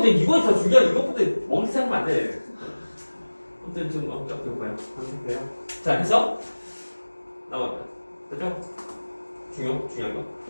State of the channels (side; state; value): both; inverted; correlation -1.00